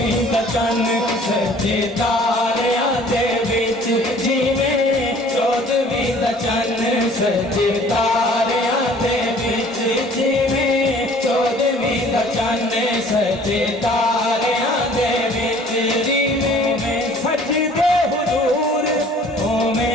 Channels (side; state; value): both; normal; correlation 0.53